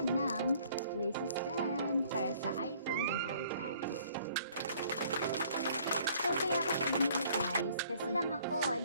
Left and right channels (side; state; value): both; inverted; correlation -0.58